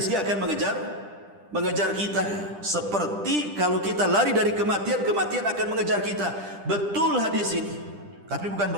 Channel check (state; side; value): late; left; 10 ms